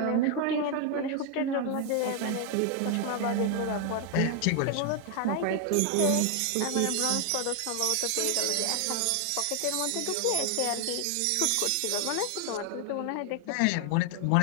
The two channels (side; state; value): both; different; correlation 0.00